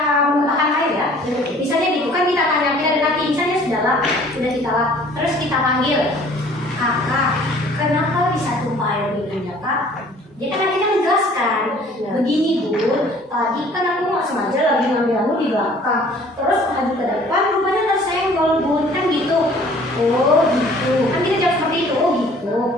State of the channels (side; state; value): both; normal; correlation 0.53